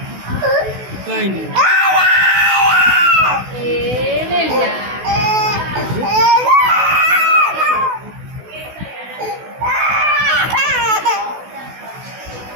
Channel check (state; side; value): late; left; 16 ms